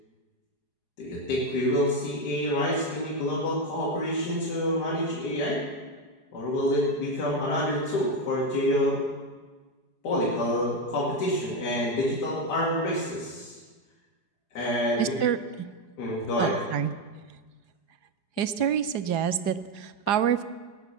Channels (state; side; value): late; right; 4.8 ms